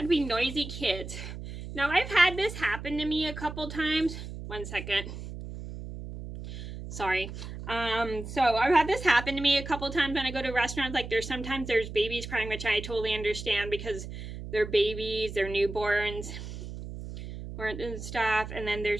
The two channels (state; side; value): noise; right; hum, 9 dB below the sound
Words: to be noisy kids. Now, I've had this happen to me a couple times. One second. Sorry. So I've had this happen to me a couple times when I go to restaurants. Like sometimes there's babies crying, which I totally understand because they're babies, they're newborns, and stuff. And then